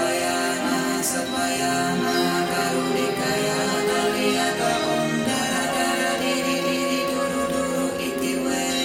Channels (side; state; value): both; identical; correlation 1.00